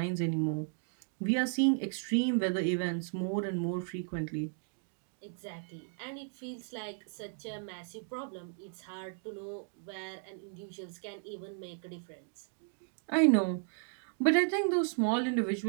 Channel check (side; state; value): left; silent; digital silence